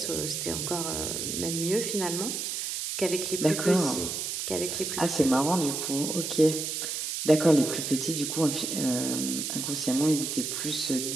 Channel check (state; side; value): noise; right; hiss, 3 dB below the sound